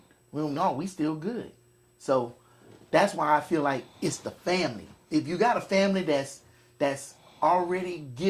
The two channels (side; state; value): both; identical; correlation 1.00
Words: we still good. So that's why I feel like it's the family. If you got a family that's already